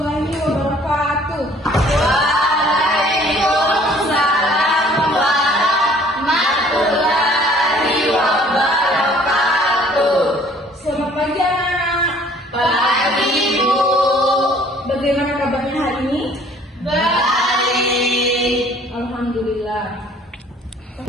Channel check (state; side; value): normal; both; correlation 0.56